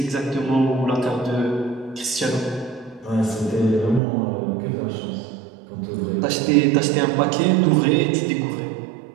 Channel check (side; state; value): left; drops out; at 4.0 s